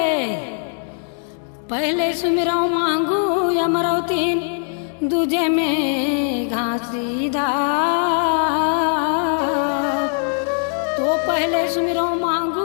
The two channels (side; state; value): right; silent; 65 dB below the other